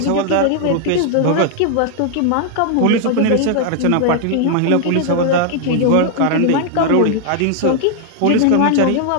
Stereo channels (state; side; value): different; both; correlation 0.00